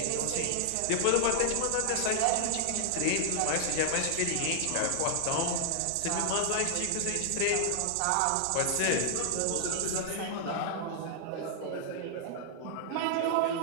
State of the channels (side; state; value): both; different; correlation 0.00